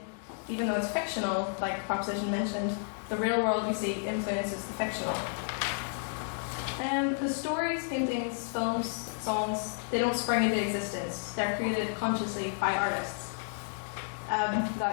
Even though it's fictional, like the proposition mentioned, the real world we see influences the fictional. The stories, paintings, films, songs, they don't spring into existence. They're created consciously by artists.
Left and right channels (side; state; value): right; silent; digital silence